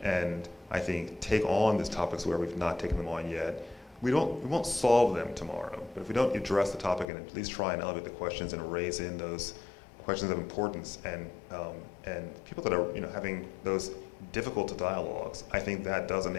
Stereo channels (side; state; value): right; drops out; at 7.1 s